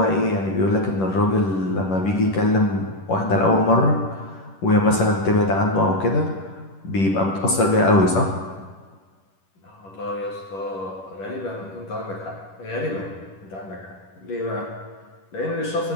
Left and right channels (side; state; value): right; late; 10 ms